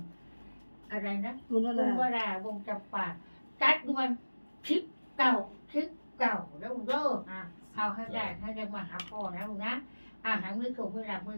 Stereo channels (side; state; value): both; inverted; correlation -1.00